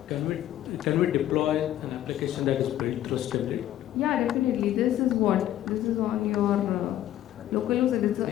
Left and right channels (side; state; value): right; quieter; 12.7 dB